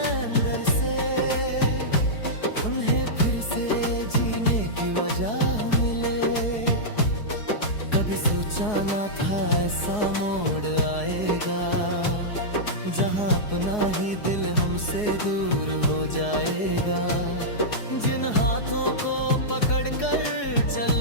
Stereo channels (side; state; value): right; late; 4.7 ms